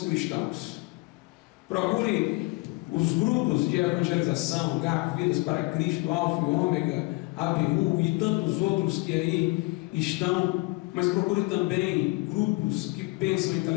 cristãos. Procure os grupos de evangelização, GAP, Vidas para Cristo, Alfa e Ômega, ABU e tantos outros que aí estão. Mas procure também grupos que pensam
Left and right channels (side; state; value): right; quieter; 25.8 dB